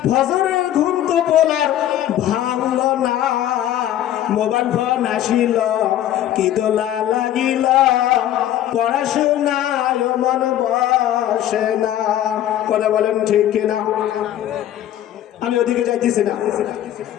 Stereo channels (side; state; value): right; quieter; 12.0 dB